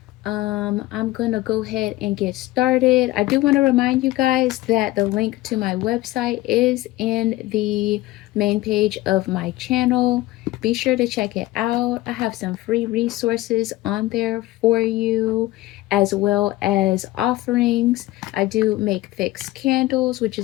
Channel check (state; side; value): quieter; right; 17.7 dB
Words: I'm gonna go ahead and get started. I do want to remind you guys that the link to my website is in the main page of my channel. Be sure to check it out. I have some free resources on there for you, as well as offerings. I do make fixed candles, which